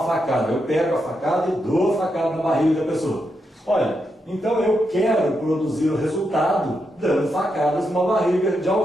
facada. Eu pego a facada e dou a facada na barriga da pessoa. Olha, então eu quero produzir o resultado dando facadas numa barriga de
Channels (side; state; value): both; normal; correlation 0.83